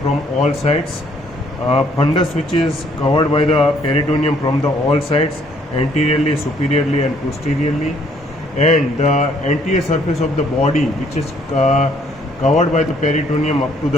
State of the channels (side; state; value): both; normal; correlation 0.65